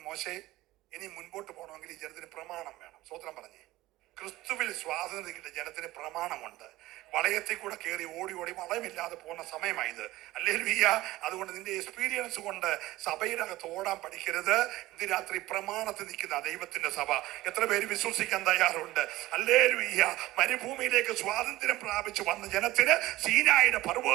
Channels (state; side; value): quieter; left; 17.3 dB